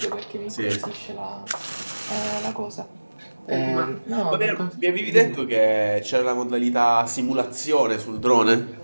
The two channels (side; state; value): both; inverted; correlation -1.00